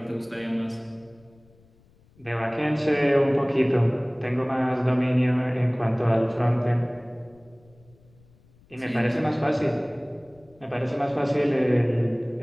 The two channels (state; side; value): noise; left; rumble, 30 dB below the sound